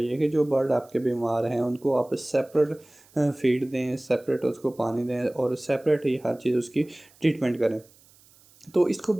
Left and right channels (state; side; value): noise; right; hiss, 28 dB below the sound